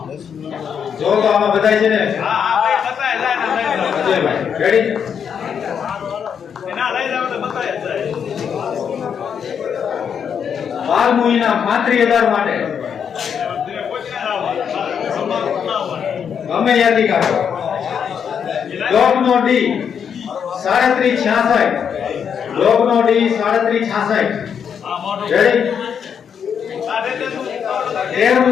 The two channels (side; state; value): right; quieter; 7.5 dB